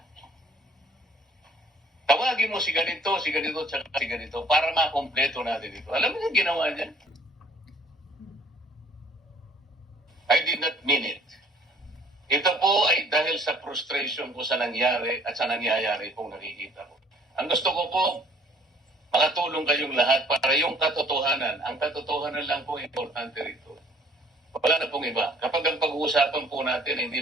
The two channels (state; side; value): normal; both; correlation 0.57